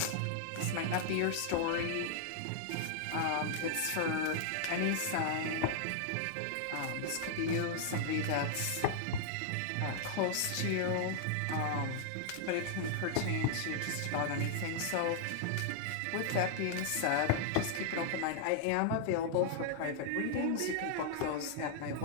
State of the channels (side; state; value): both; different; correlation 0.00